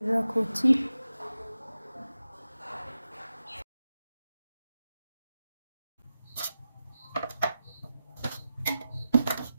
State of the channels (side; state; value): both; inverted; correlation -0.92